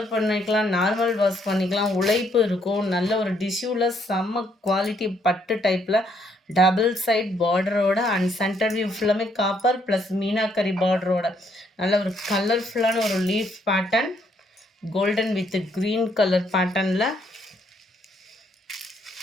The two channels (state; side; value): normal; both; correlation 0.70